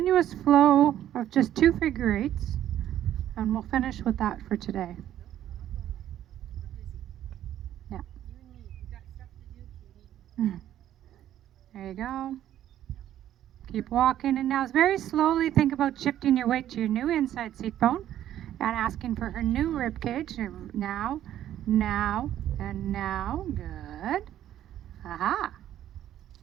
flow of just 2 figure eights. And we'll finish with that for today. We're busy. Yeah. You and me. We got stuff to do, Katie. There you go. Keep walking, and now very slowly think about shifting your weight to your new inside seat bone and asking for her new rib cage. Now, now, and now. Good. Aha.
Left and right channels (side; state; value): left; quieter; 11.7 dB